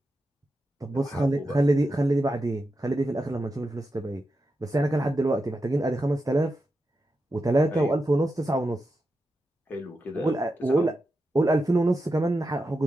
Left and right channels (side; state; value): both; normal; correlation 0.89